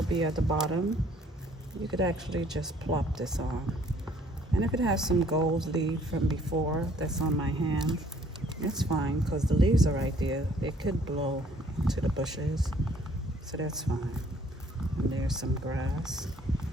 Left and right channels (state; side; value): normal; both; correlation 0.60